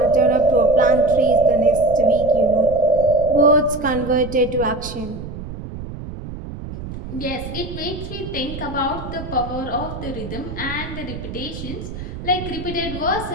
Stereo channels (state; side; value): noise; right; rumble, 10 dB below the sound